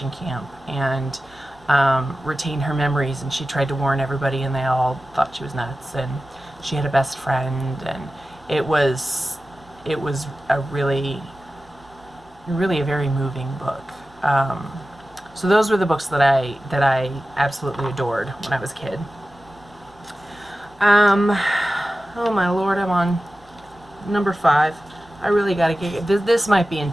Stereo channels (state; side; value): normal; both; correlation 0.95